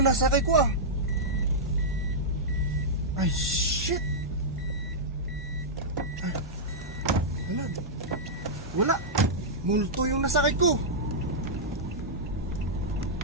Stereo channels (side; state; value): both; normal; correlation -0.10